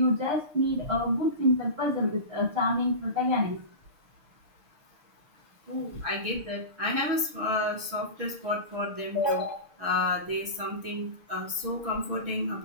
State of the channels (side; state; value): left; late; 6.7 ms